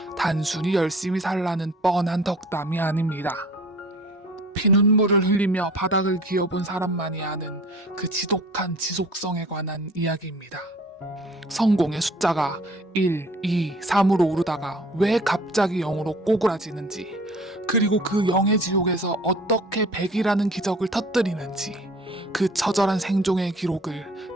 단순히 열심히 살라는 뻔한 덕담이 아닙니다. 피눈물을 흘리며 바닥을 기어본 사람만이 아는 그 지독한 지속성에 관한 이야기입니다. 성공의 숫자가 1, 2, 3으로 오르다가 왜 갑자기 0으로 꼬꾸라지는지, 그리고 그 0의 지옥에서 어떻게 100이라는 기적을 터뜨리는지, 그 처절한 생존의 기록을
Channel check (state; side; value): normal; both; correlation 0.48